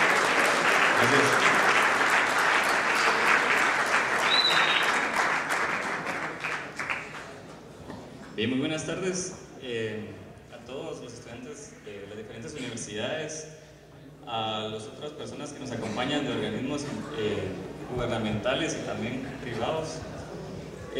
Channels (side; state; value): both; identical; correlation 1.00